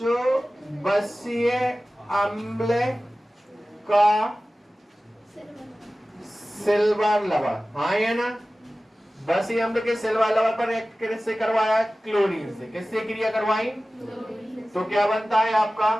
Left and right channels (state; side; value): normal; both; correlation 0.96